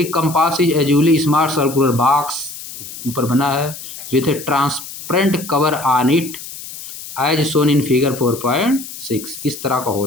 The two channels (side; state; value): left; noise; hiss, 12 dB below the sound